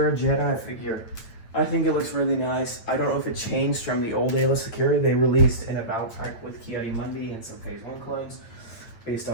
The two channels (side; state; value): right; late; 8.6 ms